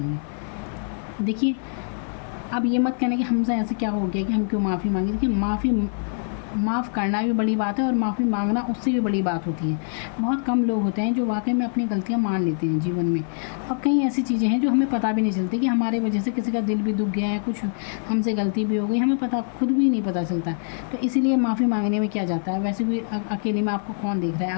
देखिए अब ये मत कहना कि हमसे ऐसे क्या हो गया कि हम क्यों माफ़ी मांगे। देखिए, माफ़ करना भी बड़ी बात है और माफ़ी मांगना उससे भी बड़ी बात होती है। बहुत कम लोग होते हैं जो वाकई में अपनी गलतियाँ मान लेते हैं जीवन में, और कई ऐसी चीज़ें हैं जो हमें पता भी नहीं चलती कि हमारे वजह से किसी का दिल भी दुख गया है, कुछ हमसे गलती भी हो गई, हमें पता खुद भी नहीं पता चलता। तो इसीलिए माफ़ी मांगने में क्या जाता है, वैसे भी अकेले में आपको कौन देख रहा है,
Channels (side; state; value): right; silent; 59 dB below the other